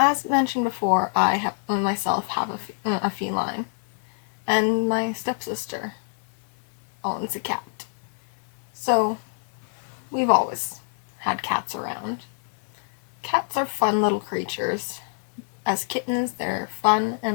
mentioned before, I myself have a feline. And my stepsister owns a cat. So, we've always had cats around. Cats are fun little creatures. As kittens, they're fun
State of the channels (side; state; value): right; silent; 61 dB below the other